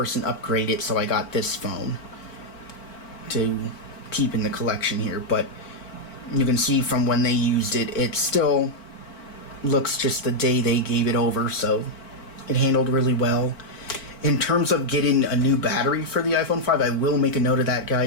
upgraded, so I got this phone to keep in the collection here. But you can see from when they used it, it still looks just the day they gave it over, so it handled really well. In terms of getting a new battery for the iPhone 5, I will make a note of that,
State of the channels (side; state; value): right; late; 4.5 ms